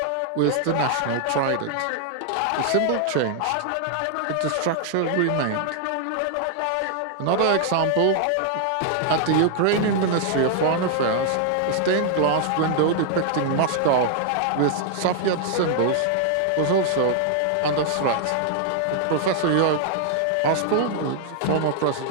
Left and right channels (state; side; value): different; both; correlation 0.00